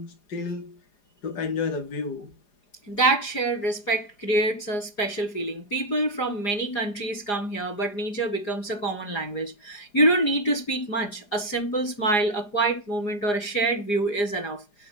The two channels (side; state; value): right; late; 4.9 ms